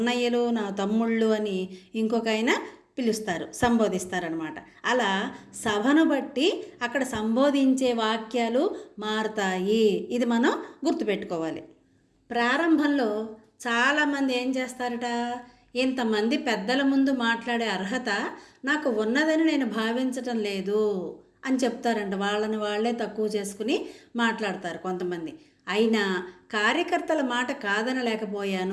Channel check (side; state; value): both; identical; correlation 1.00